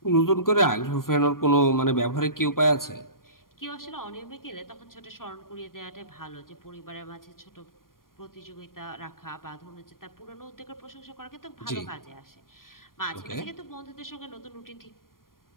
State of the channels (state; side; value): late; right; 0.91 ms